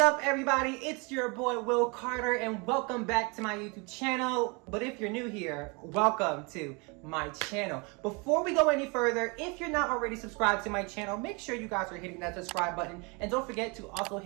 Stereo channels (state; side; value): quieter; left; 30.2 dB